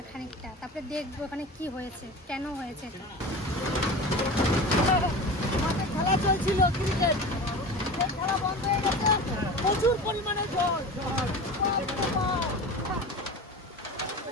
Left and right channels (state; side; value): normal; both; correlation 0.33